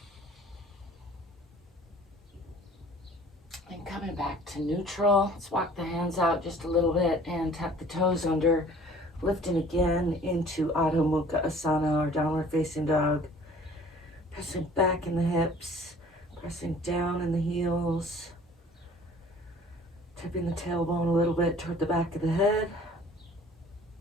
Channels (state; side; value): normal; both; correlation 0.51